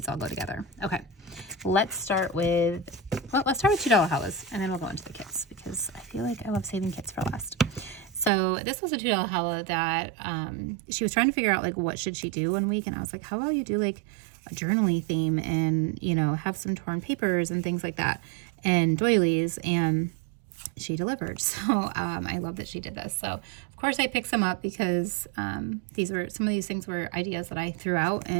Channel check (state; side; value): drops out; left; at 8.3 s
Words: all go together. Okay. Let's start with $2 halas, and then we'll go into the kits because I feel like I love saving kits for last. So this was a $2 hala that she was trying to figure out like what should she do one week, and I was like, how about you do like a journaling theme and, you know, have some torn papers and things like that and doilies, and she delivered. So I love that she did this. So of course I picked some up because some of these things were ideas that I threw out,